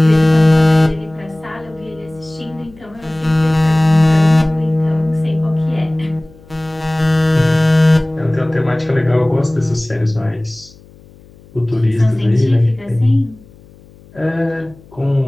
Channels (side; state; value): left; noise; hum, 25 dB below the sound